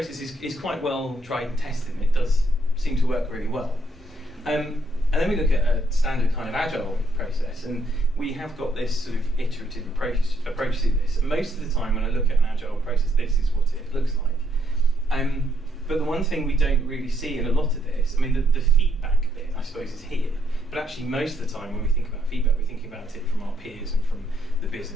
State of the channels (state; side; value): normal; both; correlation 0.73